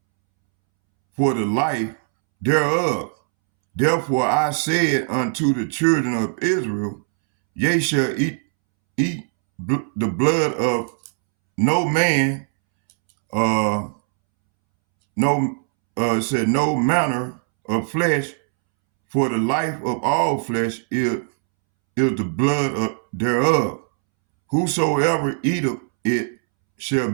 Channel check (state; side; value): silent; left; 65 dB below the other